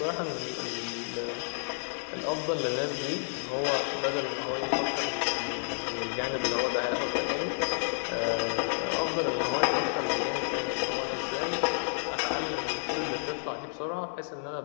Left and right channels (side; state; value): right; silent; digital silence